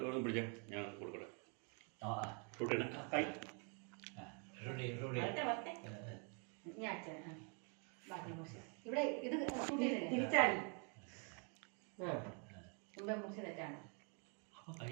പിടിച്ച ഞാൻ കൊടുക്കട്ടെ റൂട്ടിന് ഞാൻ അച്ഛൻ ബാക്കി മുറിച്ച് ഇവിടെ ഇത് തിരിച്ചാടി മുമ്പേ മുറിച്ച് തെറ്റാണ് അപ്പോൾ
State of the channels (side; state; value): left; quieter; 37.8 dB